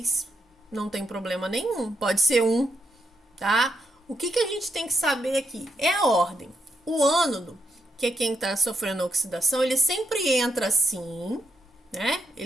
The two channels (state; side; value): normal; both; correlation 0.80